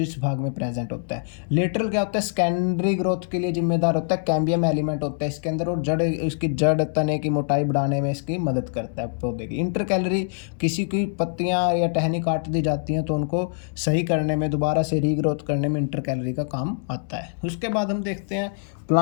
भाग में प्रेजेंट होता है। लेटरल क्या होता है? सेकेंडरी ग्रोथ के लिए जिम्मेदार होता है। कैम्बियम एलिमेंट होता है इसके अंदर, और जड़, इसकी जड़ तने की मोटाई बढ़ाने में इसकी मदद करता है पौधे की। इंटरकैलरी, किसी की पत्तियाँ या टहनी काट दी जाती हैं तो उनको सही करने में, दोबारा से रीग्रोथ करने में इंटरकैलरी का काम आता है। उसके बाद हम देखते हैं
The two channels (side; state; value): right; silent; digital silence